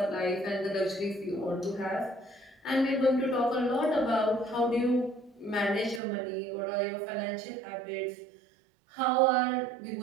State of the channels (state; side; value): drops out; left; at 6.0 s